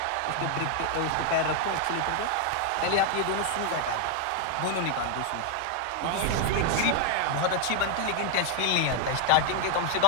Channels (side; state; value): both; different; correlation 0.00